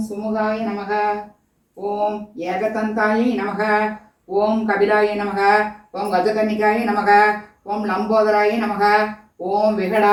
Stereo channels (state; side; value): identical; both; correlation 1.00